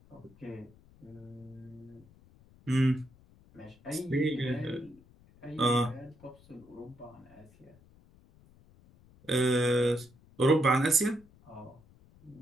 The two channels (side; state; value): left; noise; rumble, 26 dB below the sound